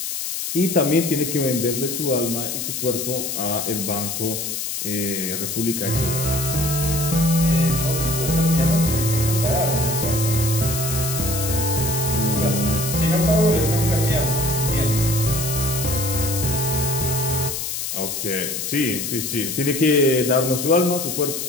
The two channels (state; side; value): noise; left; hiss, 4 dB below the sound